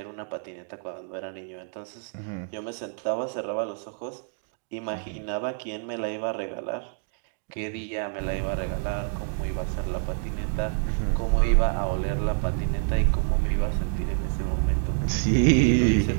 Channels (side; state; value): left; silent; digital silence